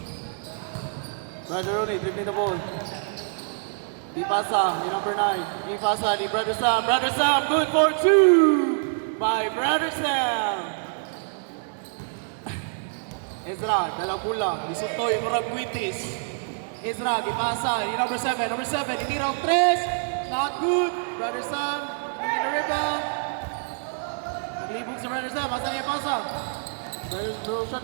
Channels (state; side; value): silent; left; digital silence